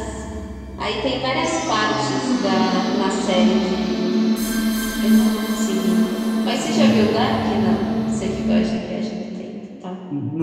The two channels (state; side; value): identical; both; correlation 1.00